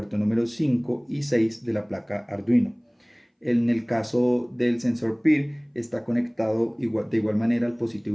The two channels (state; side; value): identical; both; correlation 1.00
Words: número 5 y 6 de la placa Arduino. En el caso del sensor PIR está conectado de igual manera al